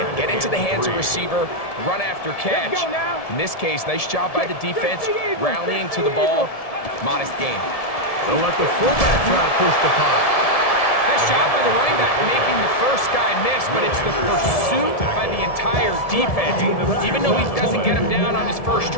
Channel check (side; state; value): right; late; 1.7 ms